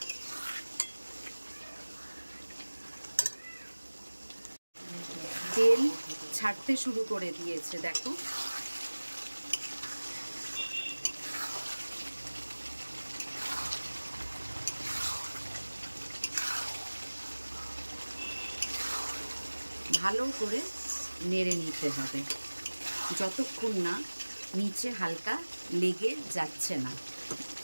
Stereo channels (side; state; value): both; inverted; correlation -1.00